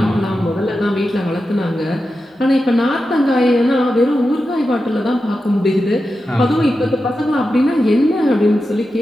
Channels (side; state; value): both; normal; correlation 0.91